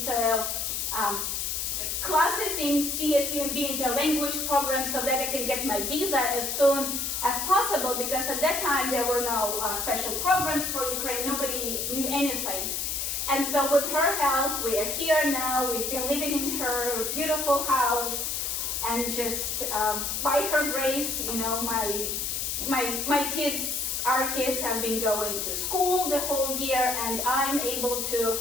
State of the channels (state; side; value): noise; left; hiss, 1 dB below the sound